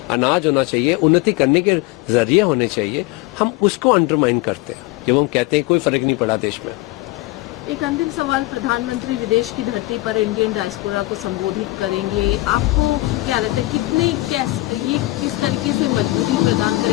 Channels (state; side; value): quieter; right; 19.8 dB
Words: अनाज होना चाहिए, उन्नति करने के जरिए होने चाहिए। हम उसको अंडरमाइन करते हैं जब हम कहते हैं कोई फर्क नहीं पड़ा देश में। एक अंतिम सवाल, प्रधानमंत्री विदेश की धरती पर इंडियन डायस्पोरा को संबोधित करेंगे, आपको क्या लगता है ये किस तरीके से मजबूती प्रदान